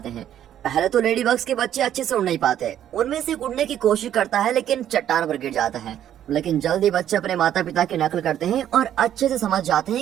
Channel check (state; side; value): quieter; left; 10.8 dB